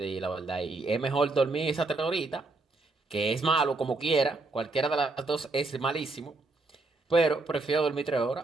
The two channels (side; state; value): left; quieter; 3.4 dB